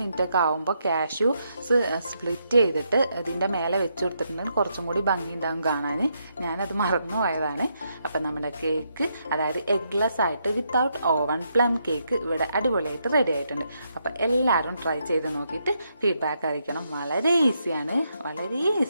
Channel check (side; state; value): both; inverted; correlation -0.79